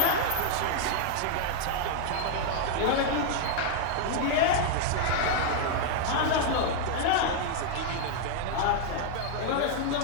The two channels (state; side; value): different; both; correlation -0.01